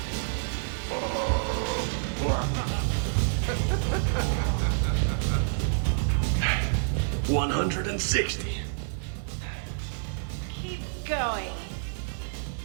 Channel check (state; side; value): silent; left; 59 dB below the other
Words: $160. Keep going.